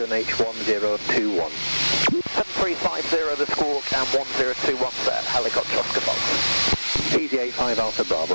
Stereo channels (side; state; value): both; inverted; correlation -1.00